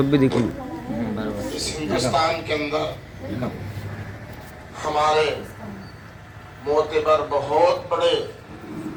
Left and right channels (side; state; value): both; identical; correlation 1.00